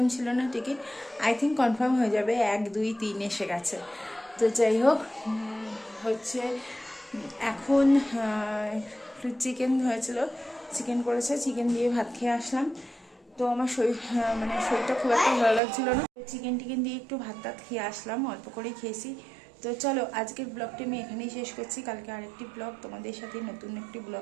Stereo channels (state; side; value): drops out; left; at 15.6 s